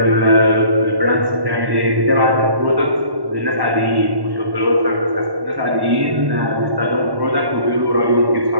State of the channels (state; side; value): late; left; 1.1 ms